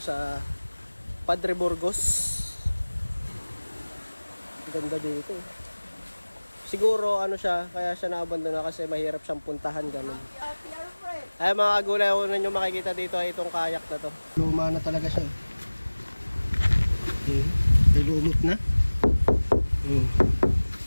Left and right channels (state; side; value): inverted; both; correlation -1.00